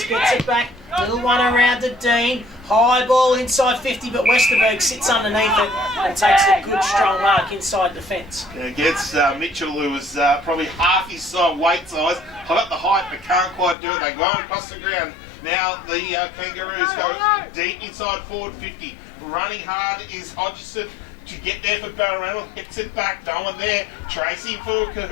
gets it back. Little one around to Dean. High ball inside 50, but Westerberg sits underneath it and takes a good strong mark inside the fence. Yeah, against Mitchell, who was probably half his weight size. Got the height, but can't quite do it. They go across the ground. Now the Kangaroos go deep inside forward 50. Running hard is Hodgson to get there for Balranald. Hits it back, no one there. Tracy for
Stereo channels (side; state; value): right; drops out; at 13.8 s